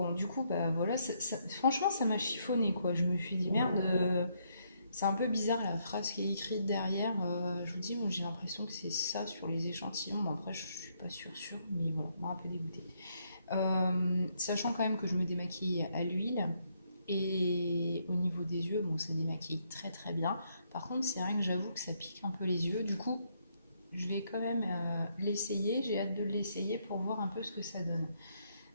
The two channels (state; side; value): inverted; both; correlation -0.74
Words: du coup, voilà, franchement, ça m'a chiffonné, quoi. Je me suis dit, merde... c'est un peu bizarre la phrase qui est écrite derrière. Je vous dis, moi j'ai l'impression que c'est ça sur les échantillons. Bon, après, je suis pas sûre, mais voilà, moi un peu dégoûtée. Sachant quand même que je me démaquille à l'huile et au niveau des yeux, bon, ça démaquille très très bien. Par contre, c'est vrai que j'avoue que ça pique un peu les yeux. Du coup, je vais quand même l'essayer. J'ai hâte de l'essayer pour voir un peu ce que ça donne.